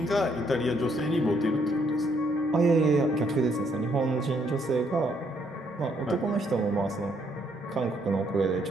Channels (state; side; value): normal; both; correlation 0.70